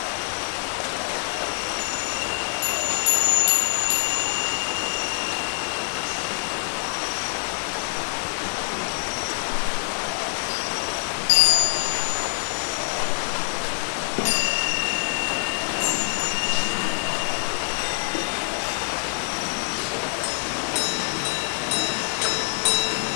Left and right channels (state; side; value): silent; right; 56 dB below the other